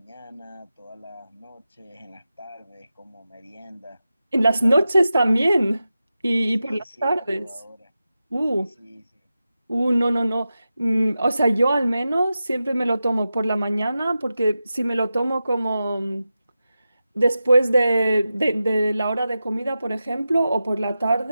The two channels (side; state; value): both; inverted; correlation -0.92